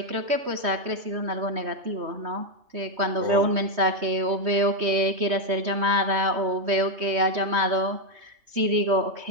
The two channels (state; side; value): late; left; 3.1 ms